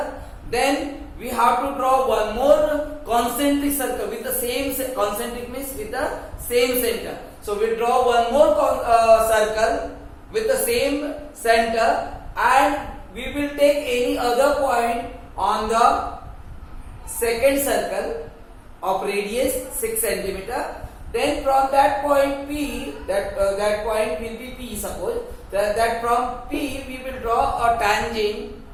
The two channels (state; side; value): identical; both; correlation 1.00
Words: Then we have to draw one more concentric circle with the same concentric means with the same center. So we draw one more circle with the same center, and we will take any other point on the second circle of radius 6 cm. Then from that point P, that point will be P, suppose that from P we will draw a tangent